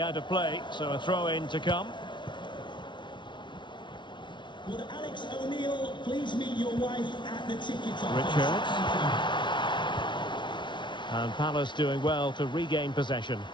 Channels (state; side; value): late; right; 0.23 ms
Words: out of play, so a throw-in to come. Would Alex O'Neill please meet your wife at the ticket office? Richards. And Palace doing well to regain possession.